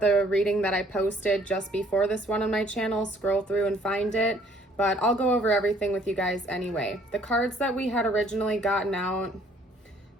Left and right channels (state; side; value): normal; both; correlation 0.61